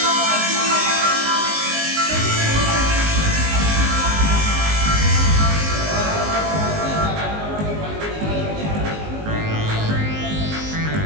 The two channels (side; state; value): left; late; 19 ms